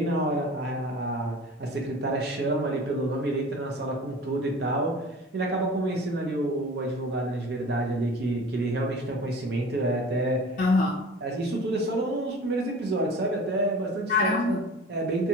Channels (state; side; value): normal; both; correlation 0.40